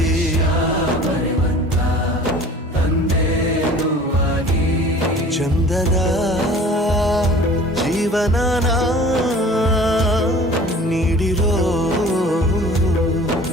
ಬರೆವಂತ ತಂದೇನೂ ಆಗಿ ಚಂದದ ಜೀವನನ ನೀಡಿರೋ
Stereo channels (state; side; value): normal; both; correlation 0.46